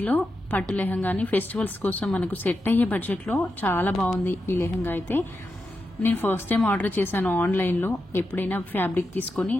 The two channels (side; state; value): both; normal; correlation 0.88